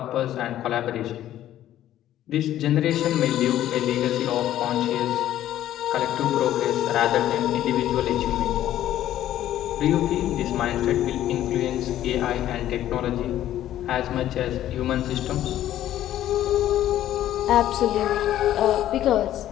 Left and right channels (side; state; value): right; quieter; 12.6 dB